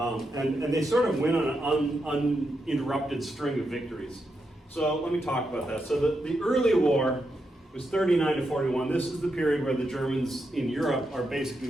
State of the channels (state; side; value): normal; both; correlation 0.84